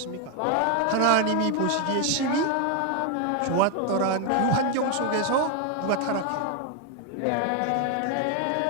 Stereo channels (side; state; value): both; different; correlation 0.01